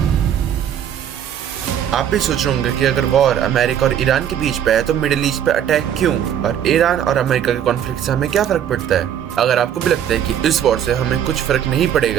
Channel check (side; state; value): left; quieter; 9.6 dB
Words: आप भी सोच रहे होंगे कि अगर वॉर अमेरिका और ईरान के बीच पे है तो मिडिल ईस्ट पे अटैक क्यों, और ईरान और अमेरिका के कॉन्फ्लिक्ट से हमें क्या फर्क पड़ता है। अगर आपको भी लगता है कि इस वॉर से हमें कुछ फर्क नहीं